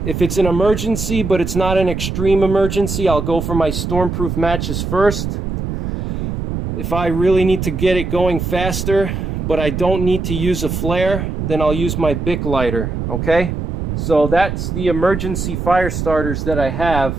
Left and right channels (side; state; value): right; noise; rumble, 4 dB below the sound